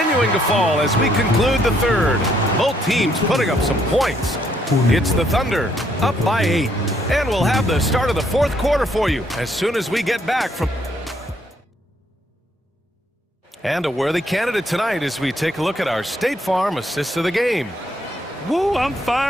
to fall as we conclude the third. Both teams putting up some points. It's the Thunder, up by 8. And we'll have the start of the fourth quarter for you as soon as we get back from... And a worthy candidate tonight as we take a look at our State Farm assists of the game. Woo, I'm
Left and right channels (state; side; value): normal; both; correlation 0.70